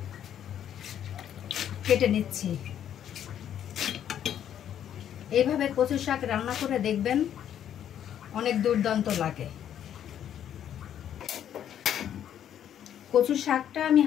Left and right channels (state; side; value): quieter; right; 10.0 dB